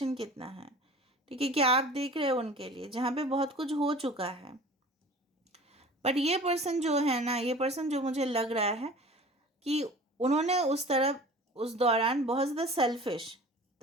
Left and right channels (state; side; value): normal; both; correlation 0.42